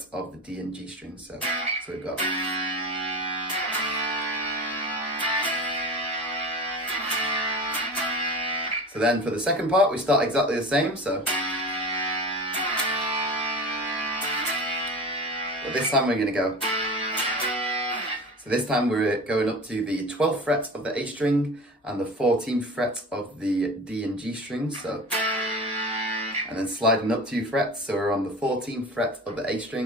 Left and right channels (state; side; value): normal; both; correlation 0.33